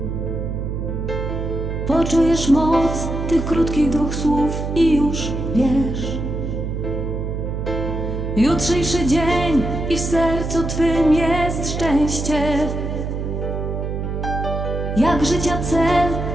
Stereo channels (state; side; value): noise; right; hum, 3 dB below the sound